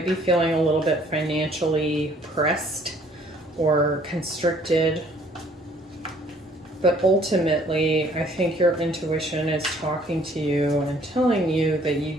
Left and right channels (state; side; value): normal; both; correlation 0.60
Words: be feeling a little bit financially pressed or constricted. But ultimately, I think your intuition is talking to you and telling you that you